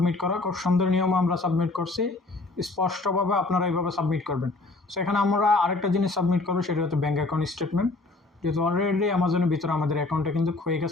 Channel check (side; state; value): right; quieter; 3.3 dB